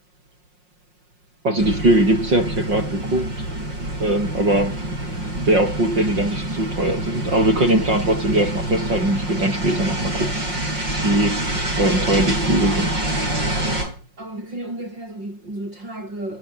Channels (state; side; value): late; left; 5.5 ms